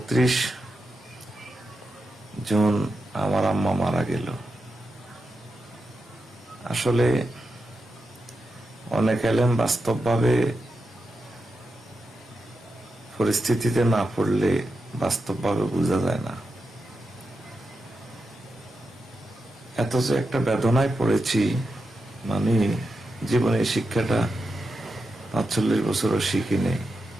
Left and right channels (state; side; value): normal; both; correlation 0.88